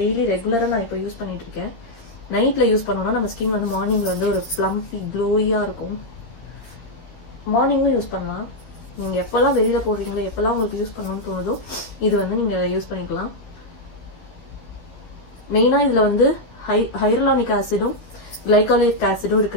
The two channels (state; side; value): late; right; 13 ms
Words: ரெகுலரா நான் இப்போ யூஸ் பண்ணிட்டு இருக்கேன். நைட்ல யூஸ் பண்ணோம்னா நம்ம ஸ்கின் வந்து மார்னிங்ல வந்து ஒரு பிளம்பி க்ளோயியா இருக்கும். மார்னிங்கும் யூஸ் பண்ணலாம். நீங்க எப்பெல்லாம் வெளியில போடுறீங்களோ, எப்பெல்லாம் உங்களுக்கு யூஸ் பண்ணணும்னு தோணுதோ இது வந்து நீங்க யூஸ் பண்ணிக்கலாம். மெயினா இதுல வந்து ஹைரலானிக் ஆசிடும் கிளைகாலிக் ஆசிடும்